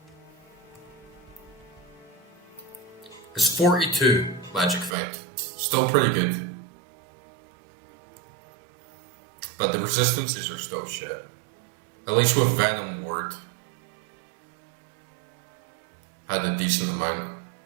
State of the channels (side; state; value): left; drops out; at 5.0 s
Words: It's 42 magic find. Still pretty good. But the resistances are still shit. At least with Venom Ward. Had a decent amount.